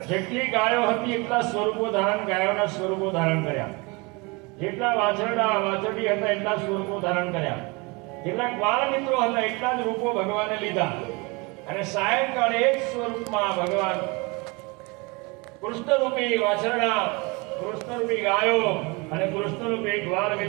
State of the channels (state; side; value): quieter; left; 27.5 dB